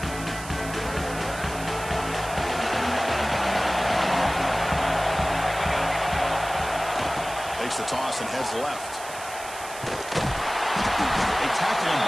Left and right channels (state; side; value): noise; right; hiss, 13 dB below the sound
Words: Takes the toss and heads left. They tackle him